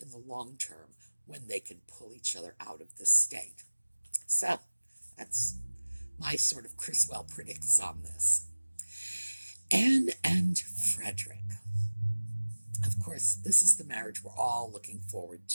the long term when they can pull each other out of this state. So, that's my sort of Criswell predicts on this. Anne and Frederick. Of course, this is the marriage we're all looking forward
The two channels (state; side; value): inverted; both; correlation -1.00